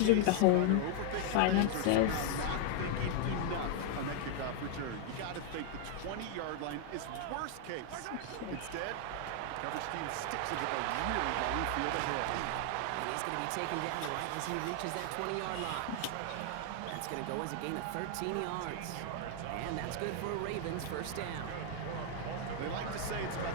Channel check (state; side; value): different; both; correlation 0.00